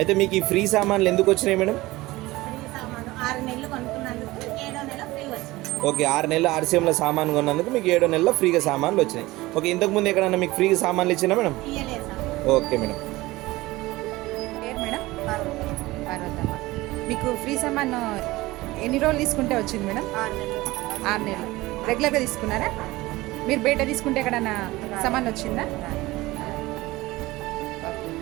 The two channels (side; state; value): left; quieter; 19.4 dB